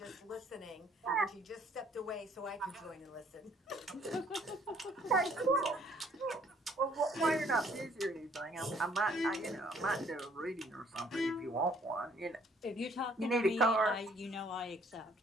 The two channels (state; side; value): normal; both; correlation 0.62